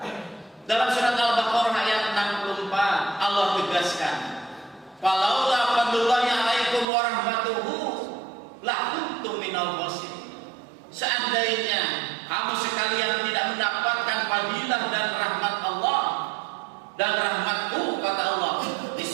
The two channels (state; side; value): drops out; left; at 6.9 s